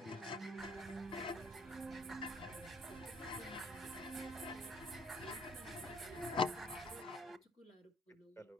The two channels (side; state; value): both; normal; correlation 0.59